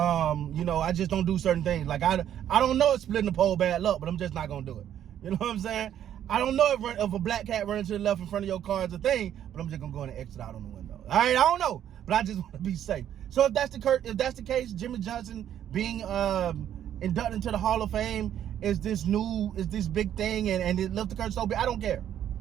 just don't do certain things. Like I don't know if splitting the pole bad luck, but I'm just not gonna do it. You know what I'm saying? I don't know if a black cat running to the left in front of your car is a thing, but I'm just gonna go in and exit out on the window. All right, I don't know. But I just want to be safe. So if that's the case, Jimmy Johnson being inducted into the Hall of Fame is this big thing, and it left the curse so big. I don't care.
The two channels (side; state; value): left; quieter; 10.4 dB